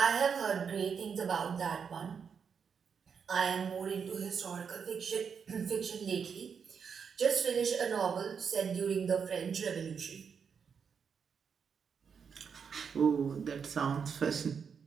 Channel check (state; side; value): quieter; left; 6.5 dB